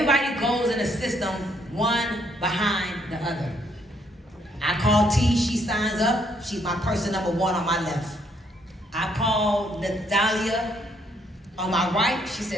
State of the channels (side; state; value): both; normal; correlation 0.70